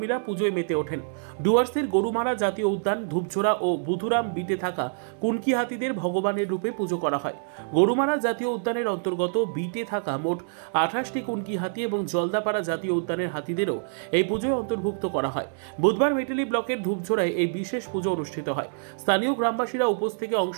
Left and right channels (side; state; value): left; silent; 61 dB below the other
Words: পুজোয় মেতে ওঠেন। ডুয়ার্সের গরুমারা জাতীয় উদ্যান, ধূপঝোড়া ও বুধুরাম বিটে থাকা কুনকি হাতিদের ভগবানের রূপে পুজো করা হয়। গরুমারা জাতীয় উদ্যানের অন্তর্গত বিটে থাকা মোট 28টি কুনকি হাতি এবং জলদাপাড়া জাতীয় উদ্যানের হাতিদেরও এই পুজোয় অন্তর্ভুক্ত করা হয়। বুধবার মেটেলি ব্লকের ধূপঝোড়ায় এই বিশেষ পুজো অনুষ্ঠিত হয়। স্থানীয় গ্রামবাসীরা উপোস থেকে অংশ